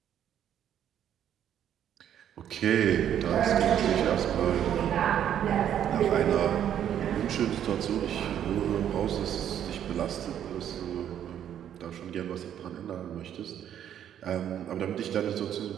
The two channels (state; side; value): quieter; left; 10.0 dB